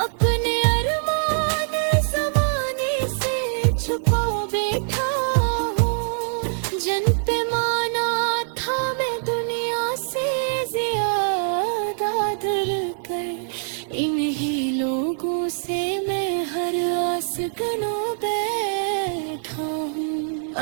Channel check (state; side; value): silent; left; digital silence